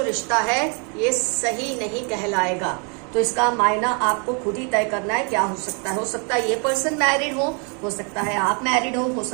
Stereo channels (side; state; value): left; quieter; 36.5 dB